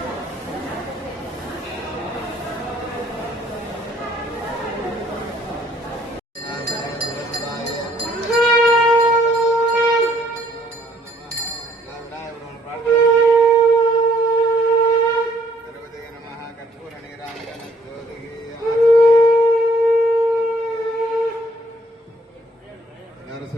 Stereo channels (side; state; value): both; normal; correlation 0.64